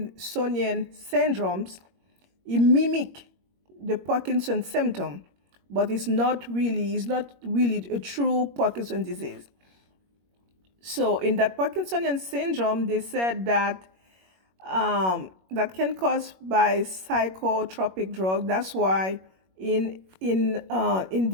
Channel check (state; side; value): late; left; 21 ms